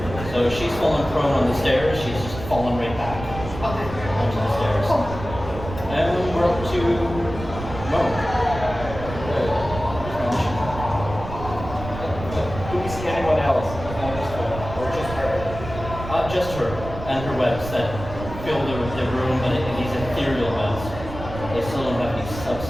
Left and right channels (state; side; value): noise; right; rumble, 10 dB below the sound